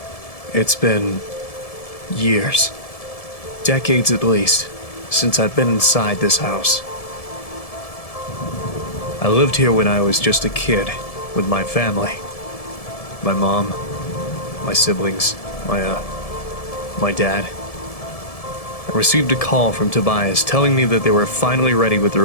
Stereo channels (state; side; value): late; right; 1.7 ms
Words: It's been years, decades at least, since I've been inside this house. I lived here when I was just a kid with my family. My mom, my siblings, my dad. I received a call from Tobias telling me that they were finally ready with the